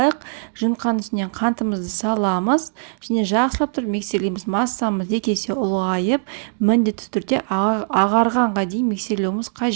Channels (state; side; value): silent; left; digital silence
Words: Жымқанның үстіне қантымызды саламыз. Және жақсылап тұрып миксерлейміз. Массамыз екі есе ұлғайып, міндетті түрде ағарғанға дейін миксерлеуіміз